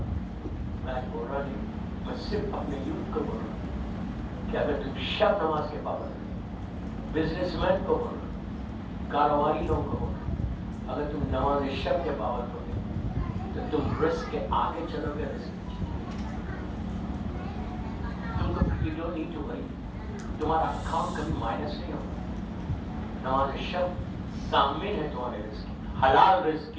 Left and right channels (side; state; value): both; identical; correlation 1.00